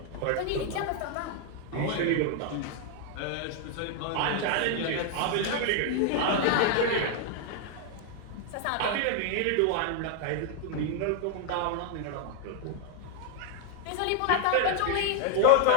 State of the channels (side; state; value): both; different; correlation 0.00